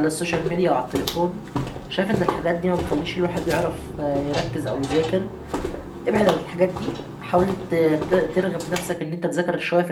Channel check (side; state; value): both; identical; correlation 1.00